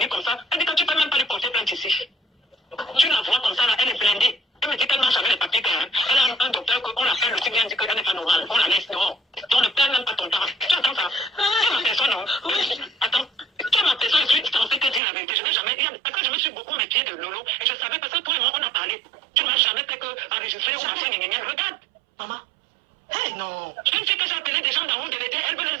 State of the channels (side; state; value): left; drops out; at 15.0 s